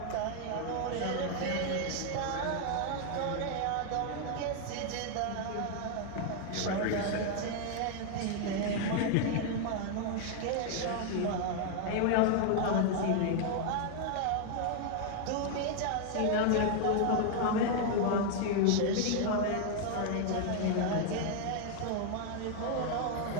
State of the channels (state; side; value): different; both; correlation 0.00